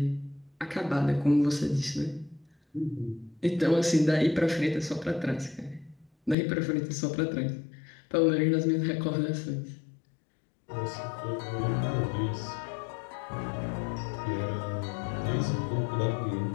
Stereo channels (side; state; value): right; drops out; at 6.4 s